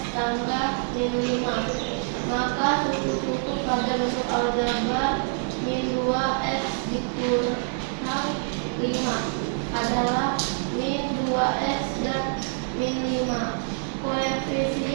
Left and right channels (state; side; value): silent; left; 59 dB below the other